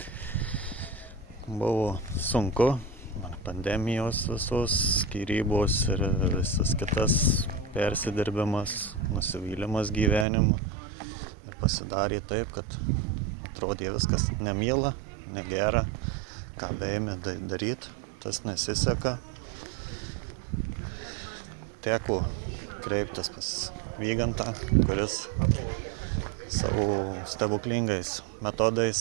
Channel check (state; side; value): drops out; left; at 10.2 s